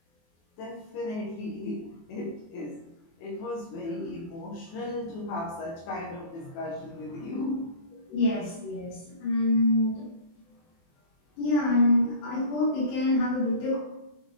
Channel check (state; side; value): late; right; 24 ms